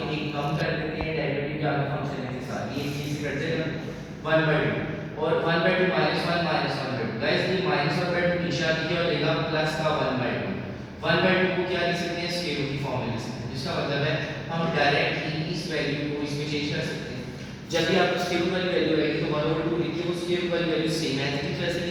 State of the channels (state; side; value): identical; both; correlation 1.00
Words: एक कम कर देते हैं. डेरिवेटिव के आगे फंक्शन है के साथ ये चीज से कट जाएगा 1/2 और 1/2 minus 1 minus 1/2. गाइस ये minus 1/2 नीचे आ गया और लेगा प्लस का 1/2. 1/2 को क्या लिख सकते हैं? स्केल रूट की फॉर्म में लिख सकते हैं. जिसका मतलब है हम डायरेक्टली इस वैल्यू को इसमें चेंज कर सकते हैं. जब भी आपको स्केल रूट वाली वैल्यू आएगी तो 1/2 लिखिए. वो स्केल रूट वाली वैल्यू सेम है इस तरह से